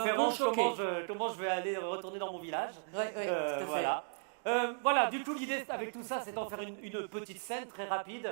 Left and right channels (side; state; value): left; silent; digital silence